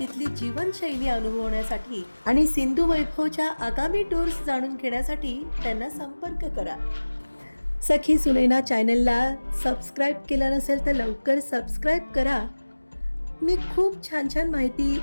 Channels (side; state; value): both; inverted; correlation -1.00